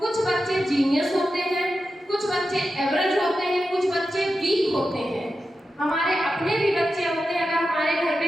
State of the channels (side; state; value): both; normal; correlation 0.91